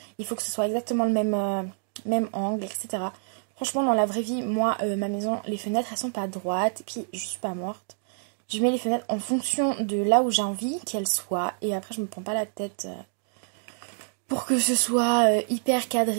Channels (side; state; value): left; silent; digital silence